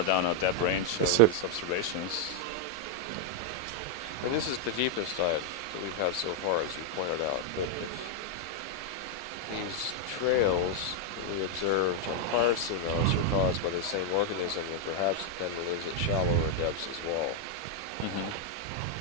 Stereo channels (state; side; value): normal; both; correlation 0.00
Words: down a depth range of these observations. And this is the deepest dive that we've had so far, as you pointed out. But if these trails that we observed on prior seamounts are caused by the same organism, then perhaps it then lives at shallower depths as well.